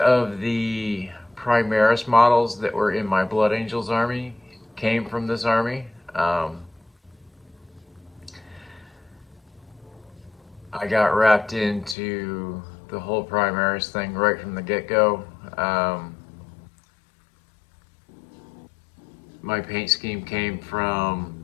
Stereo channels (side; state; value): right; drops out; at 12.0 s